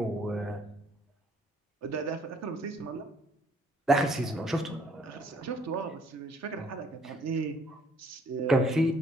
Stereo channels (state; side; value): normal; both; correlation 0.62